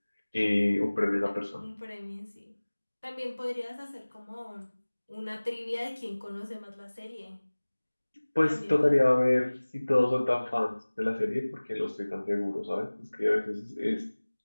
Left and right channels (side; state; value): both; inverted; correlation -1.00